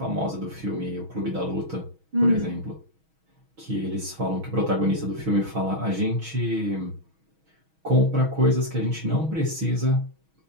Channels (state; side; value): late; left; 6.2 ms